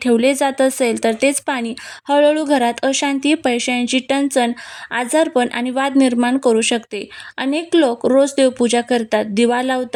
ठेवले जात असेल तर तेच पाणी हळूहळू घरात अशांती, पैशांची टंचन, आजारपण आणि वाद निर्माण करू शकते. अनेक लोक रोज देवपूजा करतात, दिवा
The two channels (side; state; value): both; identical; correlation 1.00